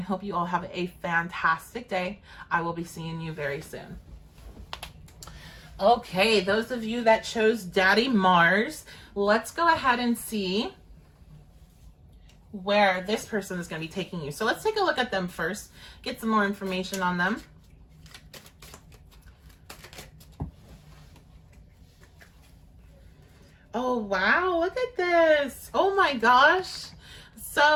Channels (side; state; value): both; identical; correlation 1.00